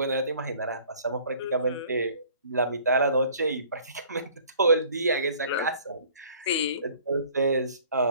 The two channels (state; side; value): inverted; both; correlation -0.53